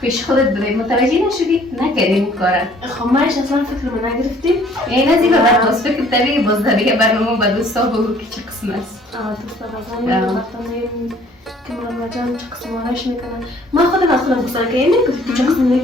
پیش خودت بده متوجه نشدی نکردیم کارا خب مایش اصلا فکر من نگرفتیم این از این بعد باز فکر تری باز دیگه برنامه با دوستا بگو که چه قسم است دوستا بازم وقتا که مرمه جان چه قسم آرش میکنن من خودم گفتم که اینه که چه قسم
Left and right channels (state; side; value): normal; both; correlation 0.57